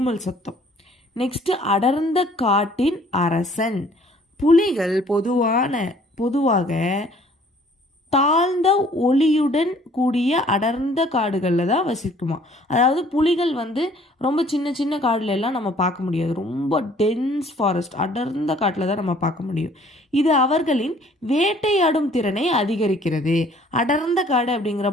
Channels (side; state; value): both; normal; correlation 0.57